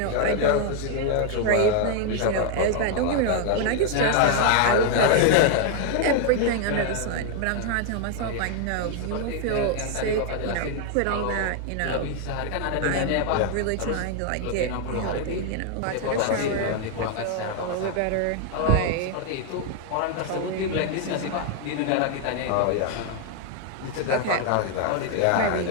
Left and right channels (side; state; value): both; different; correlation 0.00